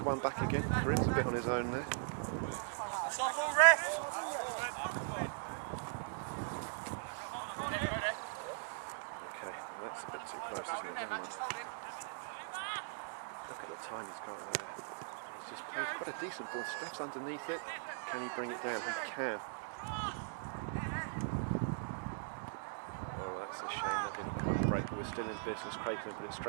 one back again. Karim's a bit on his own there. Okay, well that's a bit too close, isn't it? Never mind. Look at the time he's got there. He's just played quite a decent ball. Steph's underneath it. Can he bring it down? He can. Oh, that's a shame that didn't quite break, but we're still in business. Craig can put it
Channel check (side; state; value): left; silent; digital silence